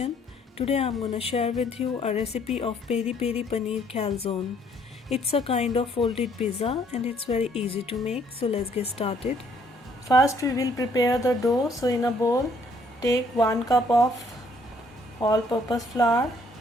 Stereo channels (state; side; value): normal; both; correlation 0.64